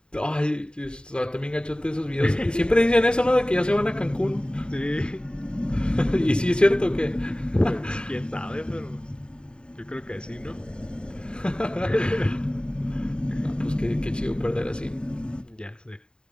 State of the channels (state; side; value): late; right; 0.049 ms